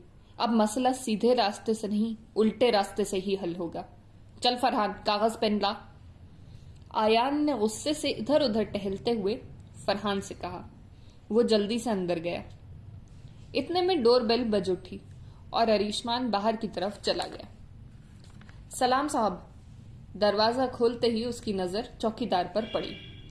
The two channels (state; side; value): identical; both; correlation 1.00